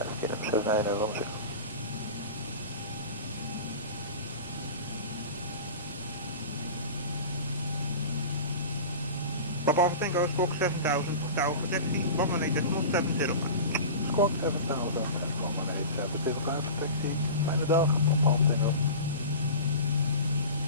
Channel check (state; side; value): inverted; both; correlation -0.33